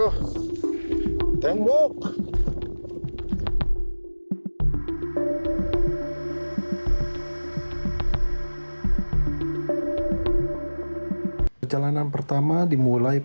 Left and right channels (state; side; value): inverted; both; correlation -1.00